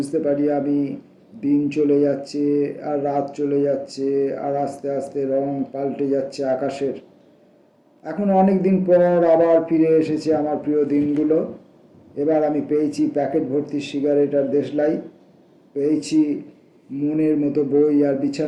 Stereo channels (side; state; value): both; identical; correlation 1.00